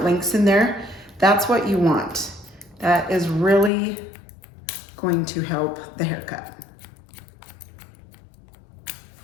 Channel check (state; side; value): drops out; right; at 3.7 s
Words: lengths in there? That's what you want. That is really going to help the haircut.